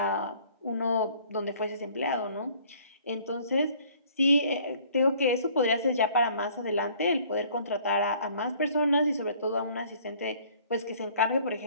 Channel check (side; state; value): both; inverted; correlation -0.56